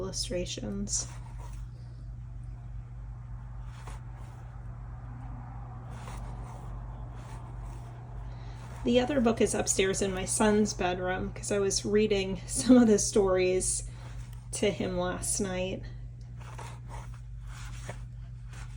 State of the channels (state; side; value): identical; both; correlation 1.00